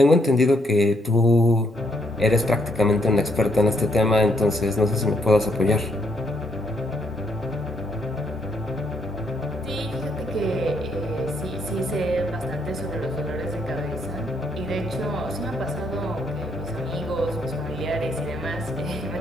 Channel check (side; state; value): both; normal; correlation 0.73